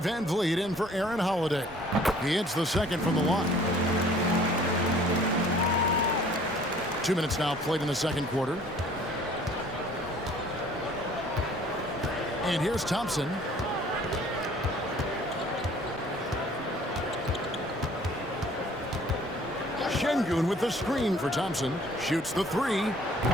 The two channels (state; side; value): normal; both; correlation 0.54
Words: in for Aaron Holiday. He hits the second from the line. 2 minutes now played in the second quarter. And here's Thompson. Şengün with the screen for Thompson. Shoots the 3.